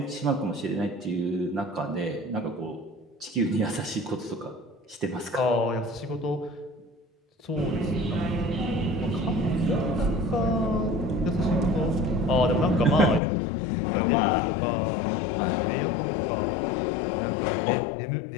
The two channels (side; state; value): right; drops out; at 13.2 s